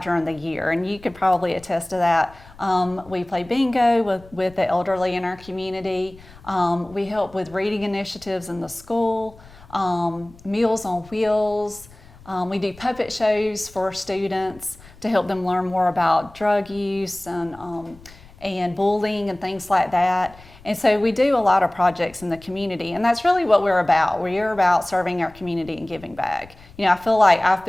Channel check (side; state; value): left; noise; rumble, 23 dB below the sound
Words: during the year, and you could probably attest to that. We play bingo with the elderly in our community. We help with reading initiatives in the school, Meals on Wheels. We do puppet shows for students to help them learn more about drug use and bullying and things like that. And so we do a lot of projects in the community, and that's really what we're about. We're about serving our community and giving back. I feel like I've